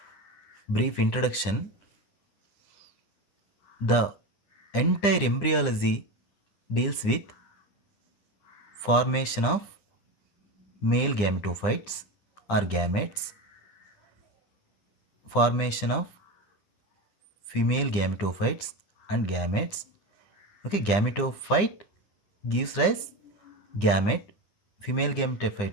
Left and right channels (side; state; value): right; late; 9.9 ms